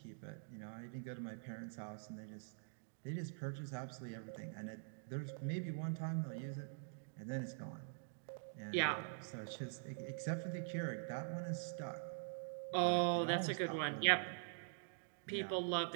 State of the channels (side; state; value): left; silent; digital silence